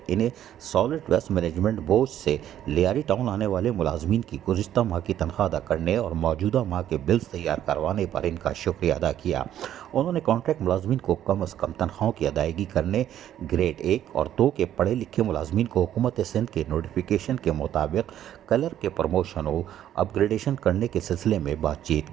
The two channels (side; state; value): left; quieter; 11.2 dB